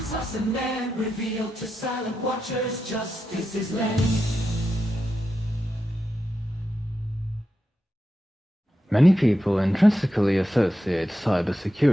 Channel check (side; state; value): both; normal; correlation 0.88